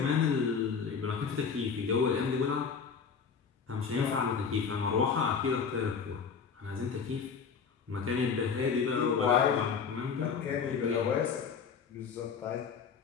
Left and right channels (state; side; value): quieter; right; 6.2 dB